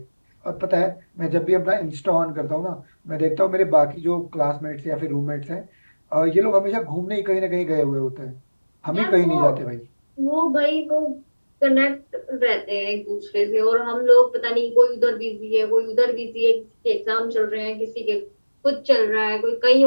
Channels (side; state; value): both; inverted; correlation -1.00